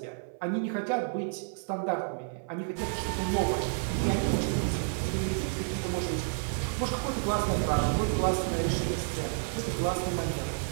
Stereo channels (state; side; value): silent; left; 58 dB below the other